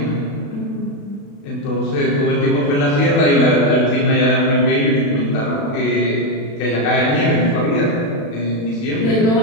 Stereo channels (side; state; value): right; late; 36 ms